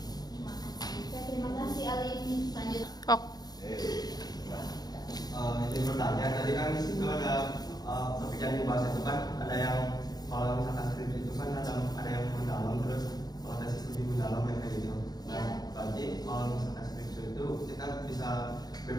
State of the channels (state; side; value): late; right; 0.19 ms